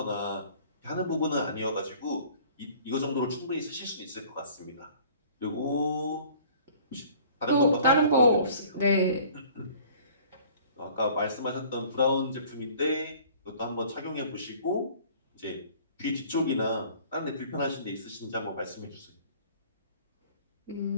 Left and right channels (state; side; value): inverted; both; correlation -0.51